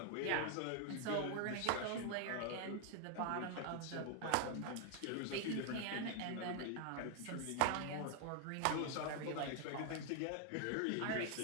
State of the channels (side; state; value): both; different; correlation 0.00